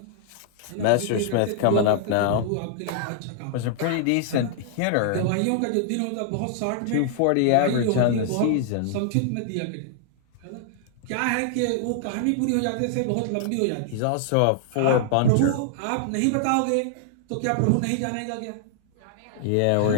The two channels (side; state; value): both; different; correlation -0.01